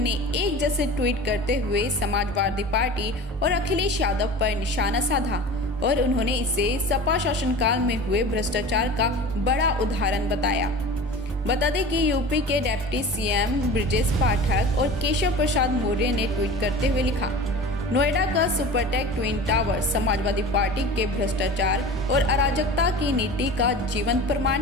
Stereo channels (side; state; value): both; normal; correlation 0.36